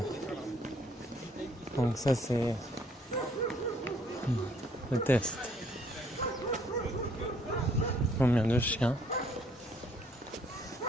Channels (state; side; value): normal; both; correlation 0.64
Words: Donc ça c'est le test. Combien de chiens